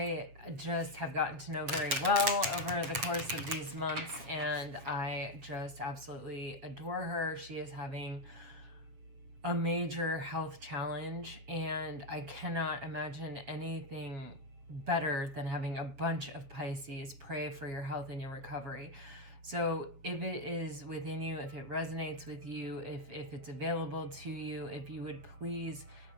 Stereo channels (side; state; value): left; late; 7.3 ms